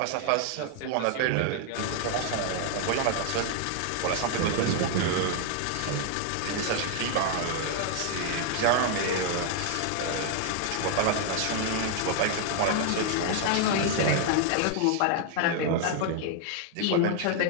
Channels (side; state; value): both; different; correlation 0.00